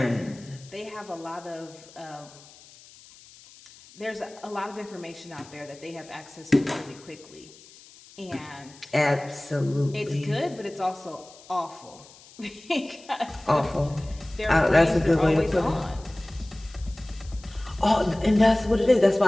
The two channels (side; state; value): left; noise; hiss, 22 dB below the sound